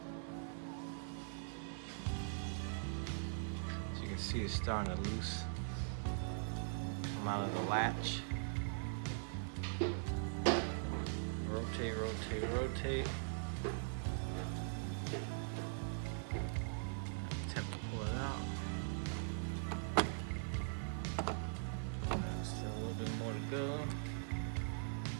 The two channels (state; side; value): silent; left; digital silence